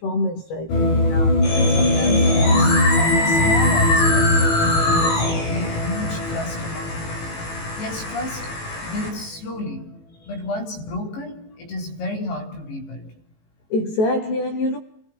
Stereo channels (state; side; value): late; right; 18 ms